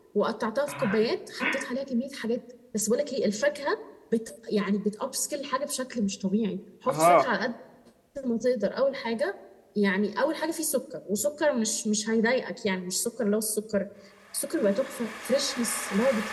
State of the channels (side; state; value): both; identical; correlation 1.00